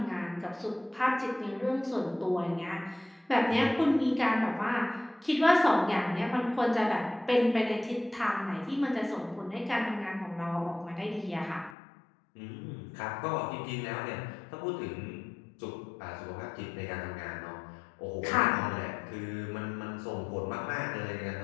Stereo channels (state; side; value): drops out; right; at 11.8 s